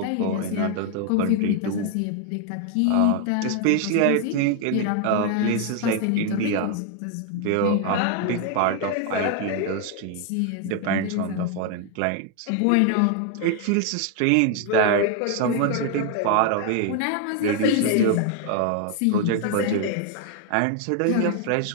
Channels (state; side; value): different; both; correlation 0.00